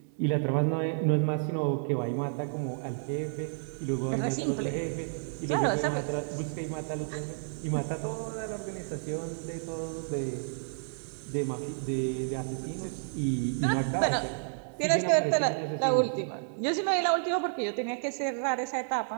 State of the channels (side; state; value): left; silent; digital silence